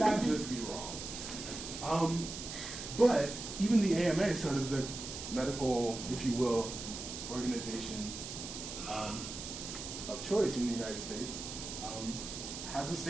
just be wrong. But even the AMA, sort of the medical, if you will, organization of choice in the United States, has a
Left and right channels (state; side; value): noise; right; hiss, 8 dB below the sound